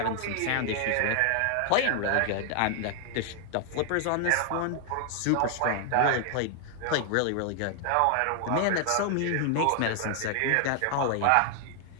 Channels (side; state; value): both; different; correlation 0.00